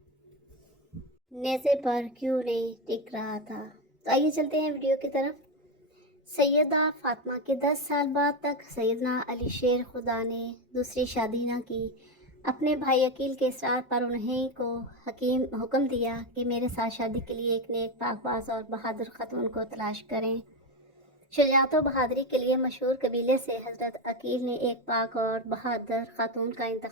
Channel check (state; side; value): normal; both; correlation 0.13